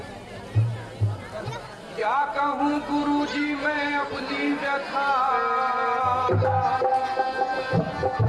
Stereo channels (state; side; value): identical; both; correlation 1.00